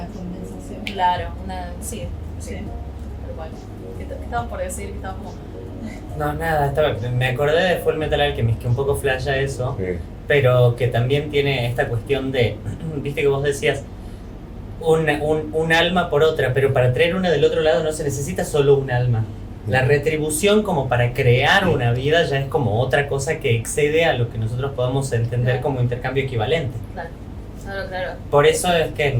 compensación. Claro, sí, Sí. tal cual. ¿Qué estabas por decir? Que estabas como... No, nada, me acordé de Full Metal Alchemist, que un poco flasha eso, Sí. pero que también tiene esta cuestión de, viste que vos decías, un alma por otra, pero para traer una del otro lado no se necesita solo un alma. La retribución como para crear una vida ya es como otra cosa que excede a lo que nosotros podemos entender Claro. como intercambio equivalente. Claro, claro, claro. Por eso es que,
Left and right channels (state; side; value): identical; both; correlation 1.00